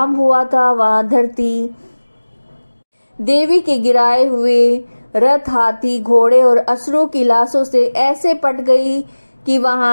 हुआ था वहां धरती देवी के गिराए हुए रथ, हाथी, घोड़े और असुरों की लाशों से ऐसे पट गई कि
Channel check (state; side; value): inverted; both; correlation -1.00